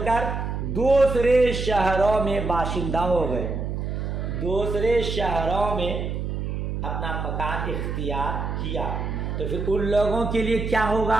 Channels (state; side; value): noise; right; hum, 3 dB below the sound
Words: کر دوسرے شہروں میں باشندہ ہو گئے، دوسرے شہروں میں اپنا مکان اختیار کیا، تو پھر ان لوگوں کے لیے کیا